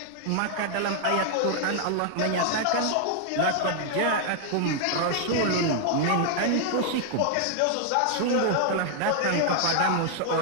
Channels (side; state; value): both; different; correlation 0.00